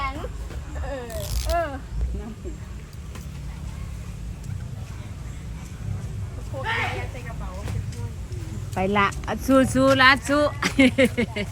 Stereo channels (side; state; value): both; identical; correlation 1.00